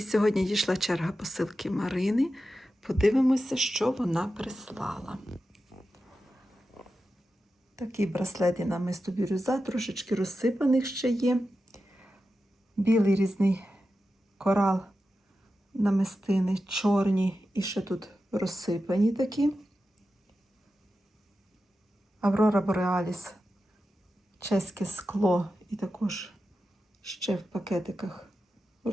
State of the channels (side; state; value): both; normal; correlation 0.91